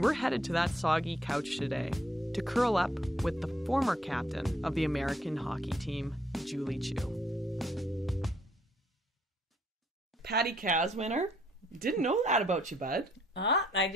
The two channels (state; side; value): normal; both; correlation 0.68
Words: we're headed to that soggy couch today to curl up with the former captain of the American hockey team, Julie Chu. Patty Caz winner. Didn't know that about you, bud. I